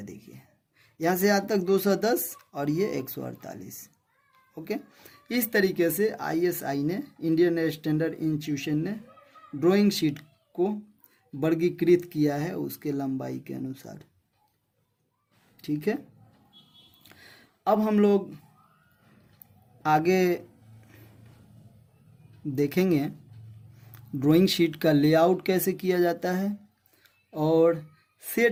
देखिए यहाँ से यहाँ तक 210 और ये 148, ओके। इस तरीके से ISI ने, इंडियन स्टैंडर्ड इंस्टीट्यूशन ने ड्राइंग शीट को वर्गीकृत किया है उसके लंबाई के अनुसार, ठीक है। अब हम लोग आगे देखेंगे ड्राइंग शीट का लेआउट कैसे किया जाता है और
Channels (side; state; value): both; identical; correlation 1.00